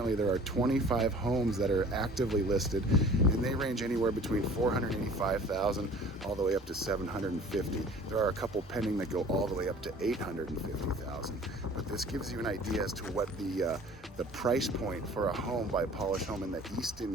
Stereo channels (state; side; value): normal; both; correlation 0.48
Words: there are 25 homes that are actively listed, and they range anywhere between $485,000 all the way up to $750,000. There are a couple pending that go all the way up to $850,000. But this gives you an idea as to what the price point for a home by Pahlisch Home in the